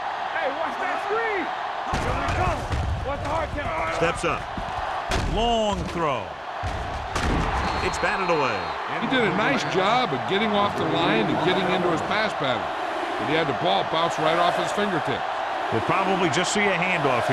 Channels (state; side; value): identical; both; correlation 1.00